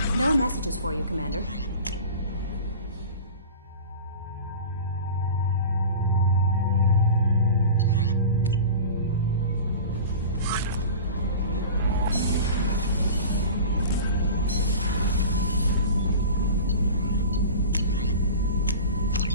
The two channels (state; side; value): inverted; both; correlation -0.35